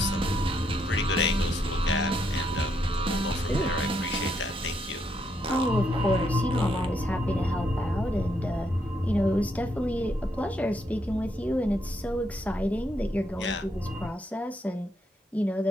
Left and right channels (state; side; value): normal; both; correlation 0.76